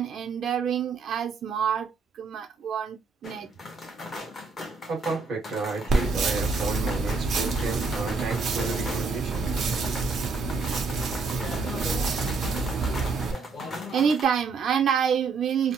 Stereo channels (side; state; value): left; quieter; 4.5 dB